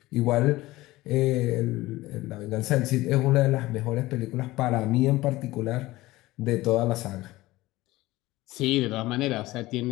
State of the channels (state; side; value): quieter; right; 18.4 dB